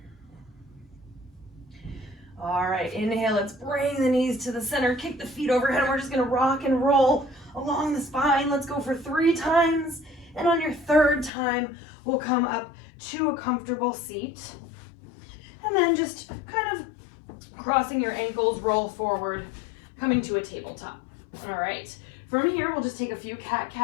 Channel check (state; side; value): drops out; right; at 11.3 s